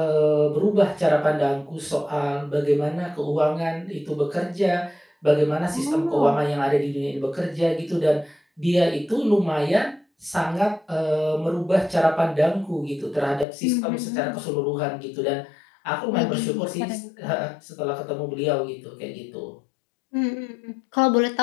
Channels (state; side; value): drops out; right; at 13.5 s